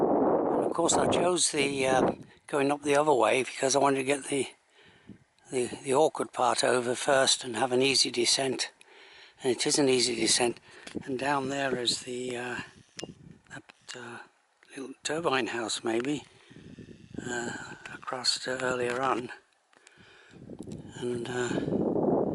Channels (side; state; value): both; identical; correlation 1.00